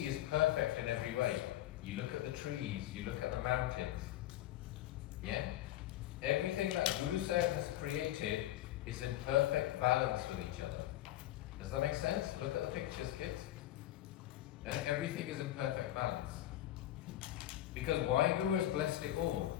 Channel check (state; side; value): quieter; right; 13.9 dB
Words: is perfect in every way. You look at the trees, you look at the mountains. Yeah? Everything that Guru Sahib has created is in perfect balance with each other. Does that make sense? Look at the pictures, kids. And everything is in perfect balance. Because Waheguru has blessed it all.